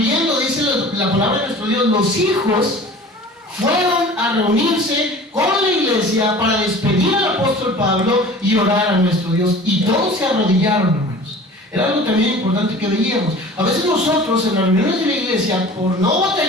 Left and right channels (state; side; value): normal; both; correlation 0.42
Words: dice la palabra de nuestro Dios, los hijos, fueron a reunirse con la iglesia para despedir al apóstol Pablo y orar a nuestro Dios. Y todos se arrodillaron, hermanos. Era algo también importante que veíamos. A veces nosotros en las reuniones de la iglesia, por no